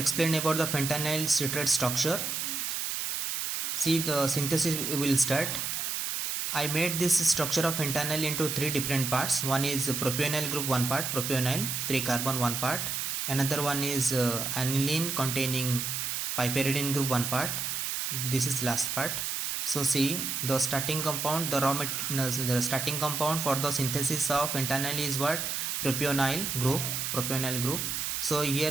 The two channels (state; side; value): noise; right; hiss, 2 dB below the sound